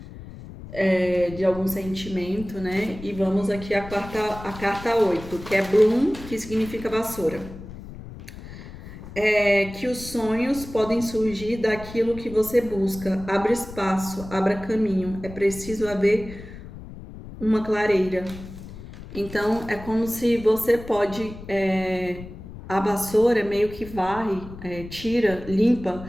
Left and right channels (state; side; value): noise; left; rumble, 14 dB below the sound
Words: De algum sentimento, né? E vamos aqui a carta 8, que é Bloom, que significa vassoura. Que os sonhos podem surgir daquilo que você busca. Abra espaço, abra caminho. É preciso haver uma clareira. Então, é como se você pode... a vassoura meio que varre, tira, limpa